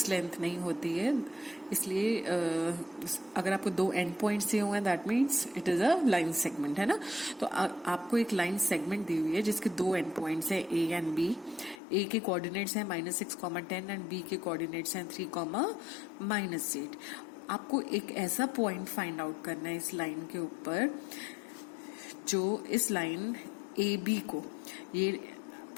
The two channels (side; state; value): right; drops out; at 11.8 s